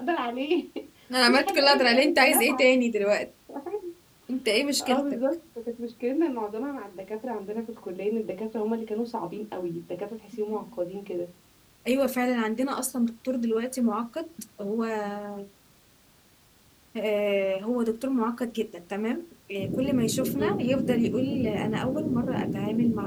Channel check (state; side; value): identical; both; correlation 1.00